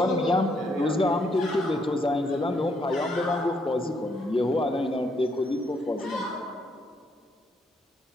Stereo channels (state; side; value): normal; both; correlation 0.73